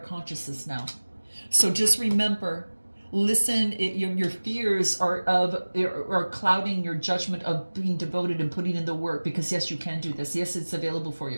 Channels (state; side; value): inverted; both; correlation -1.00